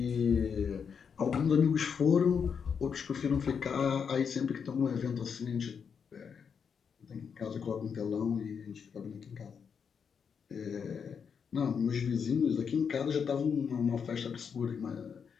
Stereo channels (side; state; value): right; quieter; 6.6 dB